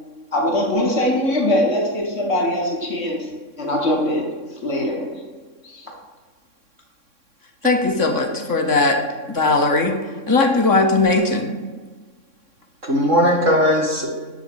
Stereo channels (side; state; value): left; late; 3.6 ms